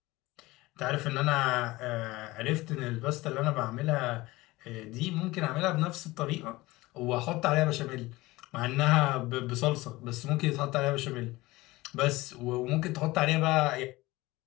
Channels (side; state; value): right; quieter; 20.0 dB